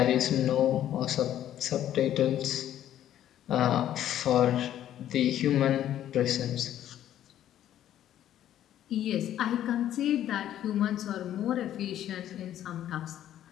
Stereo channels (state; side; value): quieter; right; 11.6 dB